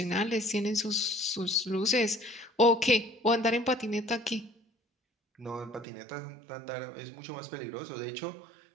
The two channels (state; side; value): drops out; left; at 5.9 s